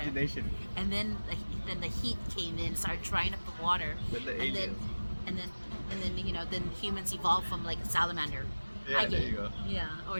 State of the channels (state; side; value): inverted; both; correlation -1.00